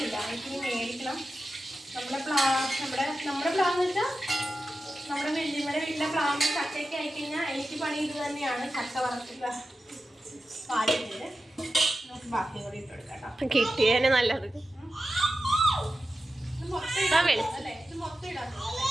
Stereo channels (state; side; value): normal; both; correlation 0.92